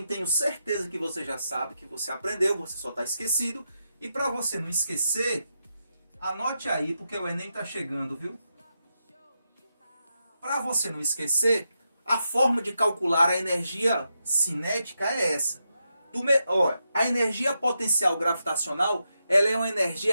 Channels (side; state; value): both; inverted; correlation -0.85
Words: tenho certeza que você já sabe, que você aprendeu, você só está esquecido. E para você não esquecer, anote aí, porque o Enem está chegando, viu? Para você não esquecer, a forma de calcular a energia cinética é essa. A energia potencial gravitacional, ela é uma